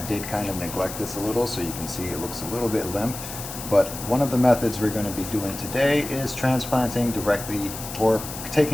kind of neglect this a little, so you can see it looks a little bit limp. But one of the methods we're going to be doing today is transplanting directly, or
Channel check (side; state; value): left; noise; hiss, 10 dB below the sound